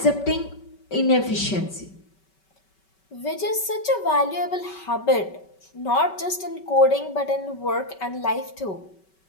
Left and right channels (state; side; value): late; right; 5.3 ms